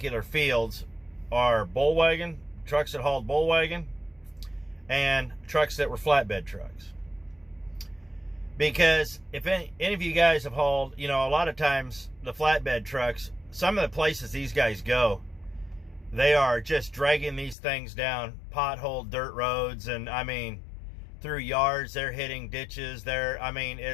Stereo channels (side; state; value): right; drops out; at 17.6 s